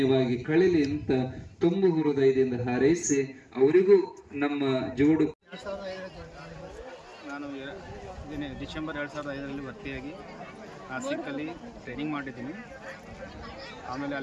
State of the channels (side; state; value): both; identical; correlation 1.00